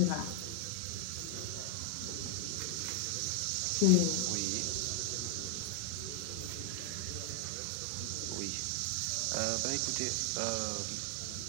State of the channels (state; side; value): different; both; correlation 0.00